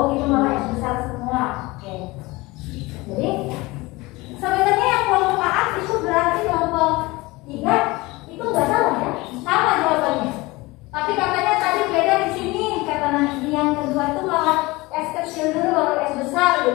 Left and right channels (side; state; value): right; quieter; 22.1 dB